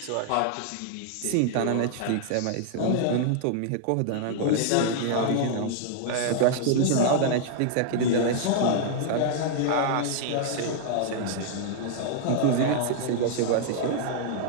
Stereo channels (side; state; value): both; different; correlation -0.01